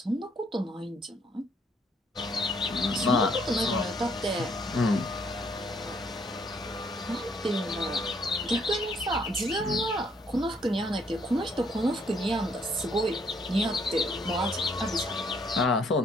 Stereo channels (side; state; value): both; normal; correlation 0.67